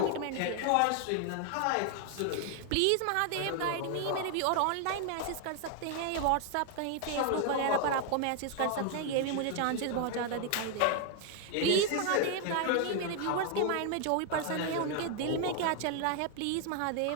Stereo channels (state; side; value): different; both; correlation 0.00